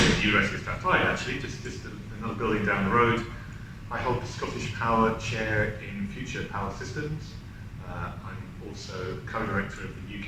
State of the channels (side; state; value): both; identical; correlation 1.00